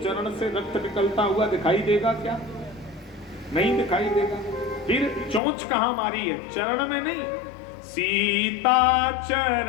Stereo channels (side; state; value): right; drops out; at 5.4 s